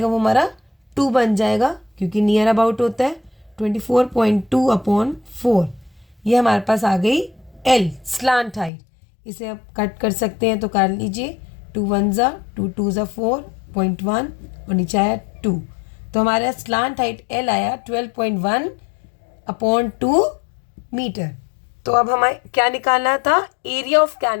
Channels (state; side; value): drops out; right; at 8.7 s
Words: वो हमारा 2 बन जाएगा, क्योंकि नियर अबाउट होता है। 24.2 अपॉन 4, ये हमारे पास आ गई L स्लांट हाइट। इसे आप कट कर सकते हैं तो कर लीजिए। 2 1 ज़ा 2 2 ज़ा 4.1 और नीचे आया 2, तो हमारा स्लांट हाइट L आया 12.1 अपॉन 2 मीटर। तो अब हमें क्या निकालना था, एरिया ऑफ